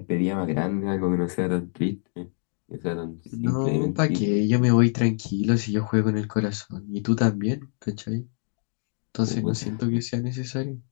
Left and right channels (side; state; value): right; silent; 59 dB below the other